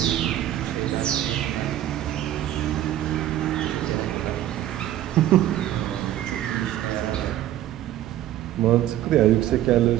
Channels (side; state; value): left; quieter; 12.8 dB